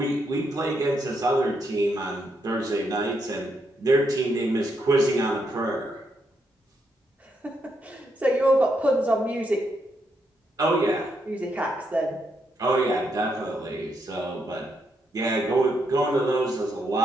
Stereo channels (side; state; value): both; normal; correlation 0.79